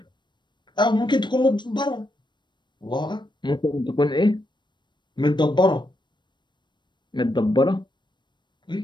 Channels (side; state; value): right; late; 0.22 ms